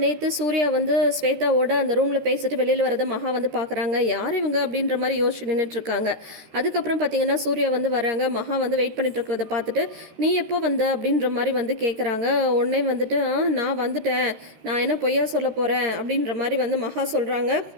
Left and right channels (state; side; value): late; left; 13 ms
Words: நேற்று சூர்யா வந்து ஸ்வேதாவோட அந்த ரூமில் பேசிட்டு வெளியில் வரதை மகா வந்து பார்க்குறாங்க. யார் இவங்க அப்படின்ற மாதிரி யோசிச்சு நின்றுட்டுருக்காங்க. அதுக்கப்புறம் பார்த்தீங்கன்னா சூர்யா வந்து வராங்க. மகா வந்து வெயிட் பண்ணிட்டு இருக்கிறத பார்த்துட்டு நீ எப்போ வந்த அப்படின்ற மாதிரி வந்து கேட்குறாங்க. உடனே வந்துட்டு நான் வந்துட்டேன், நான் என்ன பொய்யா சொல்ல போகிறேன் அப்படின்ற மாதிரி வந்து மகா சொல்கிறாங்க.